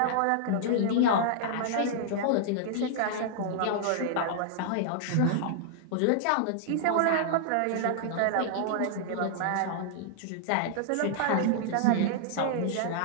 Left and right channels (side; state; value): both; different; correlation -0.01